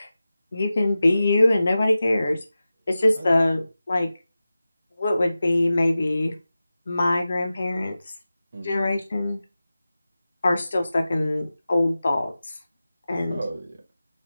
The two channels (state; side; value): inverted; both; correlation -0.95